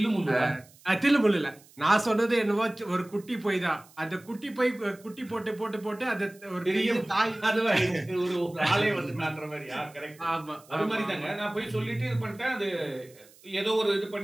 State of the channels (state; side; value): noise; right; hiss, 26 dB below the sound